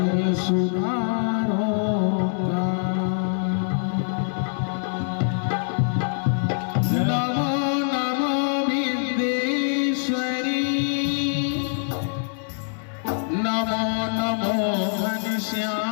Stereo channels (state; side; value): silent; right; digital silence